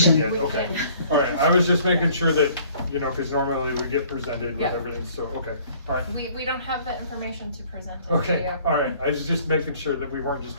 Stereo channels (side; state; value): both; inverted; correlation -0.56